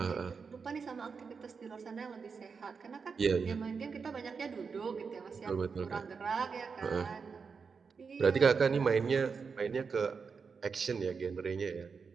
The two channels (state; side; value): quieter; left; 5.4 dB